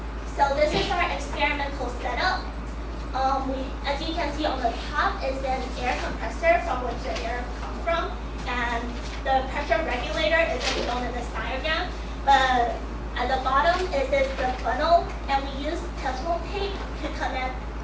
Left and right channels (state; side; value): identical; both; correlation 1.00